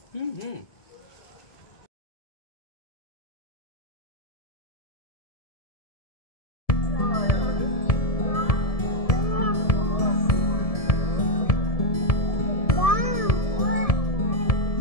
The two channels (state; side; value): late; right; 1.7 ms